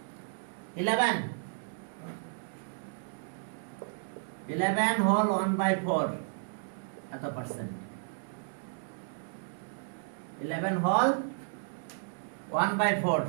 11 হোল 1/4 এত পার্সেন্ট। 11 whole 1/4,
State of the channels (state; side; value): silent; left; digital silence